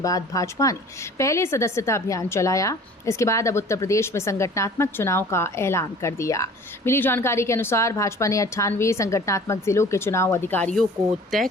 बाद भाजपा ने पहले सदस्यता अभियान चलाया। इसके बाद अब उत्तर प्रदेश में संगठनात्मक चुनाव का ऐलान कर दिया। मिली जानकारी के अनुसार भाजपा ने 98 संगठनात्मक जिलों के चुनाव अधिकारियों को तय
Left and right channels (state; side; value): normal; both; correlation 0.47